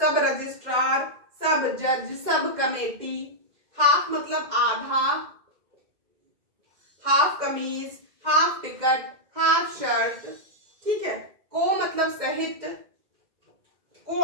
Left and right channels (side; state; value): left; late; 2.1 ms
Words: रजिस्ट्रार, सब जज, सब कमेटी। हाफ मतलब आधा, हाफ कमीज, हाफ टिकट, हाफ शर्ट, ठीक है। को मतलब सहित,